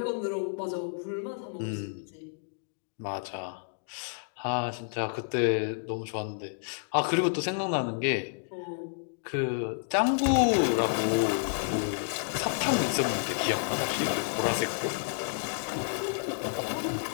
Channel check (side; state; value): right; silent; digital silence